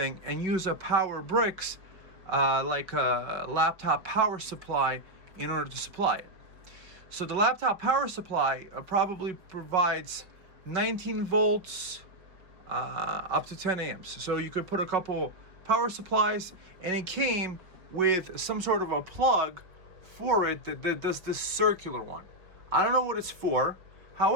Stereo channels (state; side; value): late; left; 5.4 ms